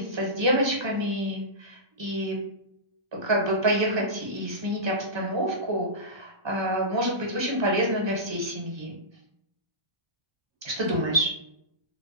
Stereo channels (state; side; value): late; left; 1.3 ms